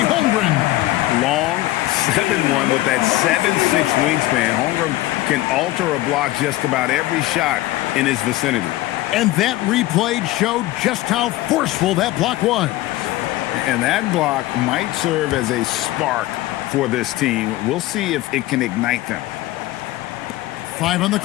Holmgren. Long 7-1 with that 7'6" wingspan. Holmgren can alter a block just about every shot in his vicinity. And that replay showed just how forceful that block was. And that block might serve as a spark for this team. We'll see if it can ignite them. 5 on the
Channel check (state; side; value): quieter; right; 17.0 dB